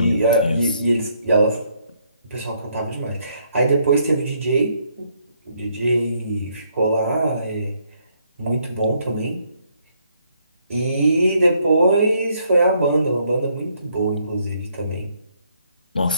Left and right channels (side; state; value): both; inverted; correlation -0.71